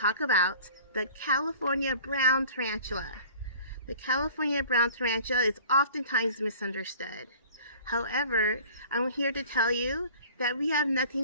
about the California Brown Tarantula. The California Brown Tarantula is oftentimes misunderstood. However, I'm here to tell you that we have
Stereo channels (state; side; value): inverted; both; correlation -0.46